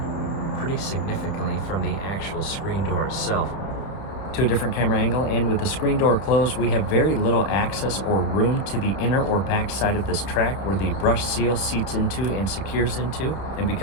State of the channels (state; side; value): late; right; 30 ms